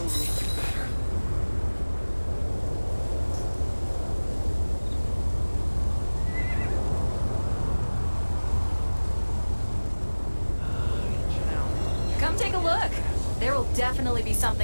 Come take a look. There will definitely be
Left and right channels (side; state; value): both; inverted; correlation -1.00